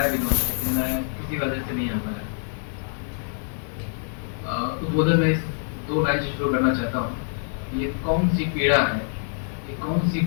भी उन्होंने, लेकिन मैं किसी वजह से नहीं आ पाया। उद्बोधन में इस 2 लाइन से शुरू करना चाहता हूँ। ये कौन सी पीड़ा है, ये कौन सी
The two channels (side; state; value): right; silent; digital silence